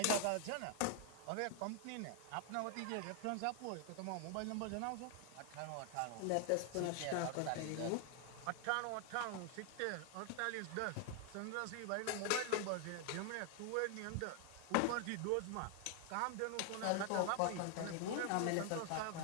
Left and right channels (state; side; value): different; both; correlation 0.00